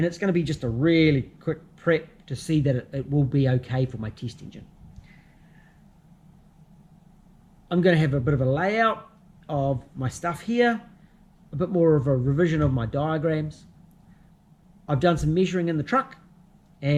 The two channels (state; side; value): identical; both; correlation 1.00